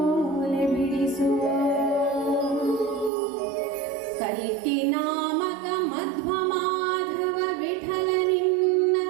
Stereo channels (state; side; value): drops out; left; at 3.1 s